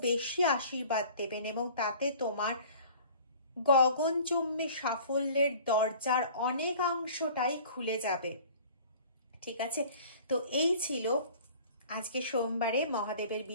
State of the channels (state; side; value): inverted; both; correlation -0.47